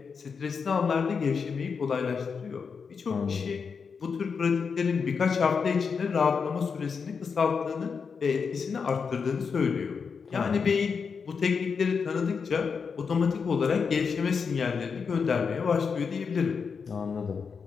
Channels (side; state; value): right; quieter; 5.7 dB